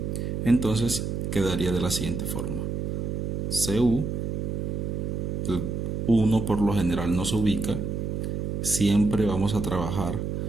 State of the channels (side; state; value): right; noise; hum, 2 dB below the sound